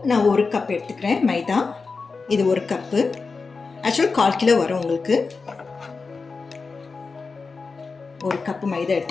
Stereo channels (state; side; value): quieter; right; 4.5 dB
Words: நான் 1 கப் எடுத்துக்கிறேன் மைதா. இது 1 கப்பு, ஆக்சுவலாக 1/4 கிலோ வரும் உங்களுக்கு. 1 கப்பு மைதா